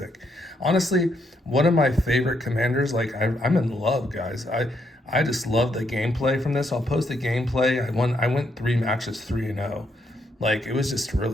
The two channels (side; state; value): both; normal; correlation 0.76